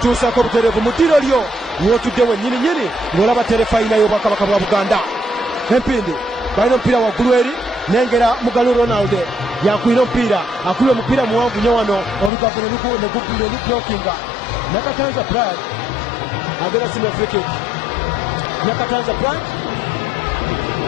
butereevu mu ddiro lyo w'otudde wennyininyini ng'olaba terefayina y'obwakabaka bwa Buganda empindi balina omupiira waggulu eri nengera Mugalu Ronald yakwira omupiira akubye omupiira muwanvu nnyo wano olugave ne lublokinga Nakatanza Brian agenda simula free kick Nakatanza Brian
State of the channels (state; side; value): drops out; right; at 12.3 s